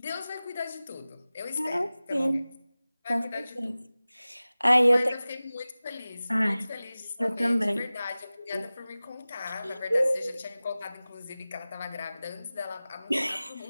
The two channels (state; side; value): inverted; both; correlation -0.97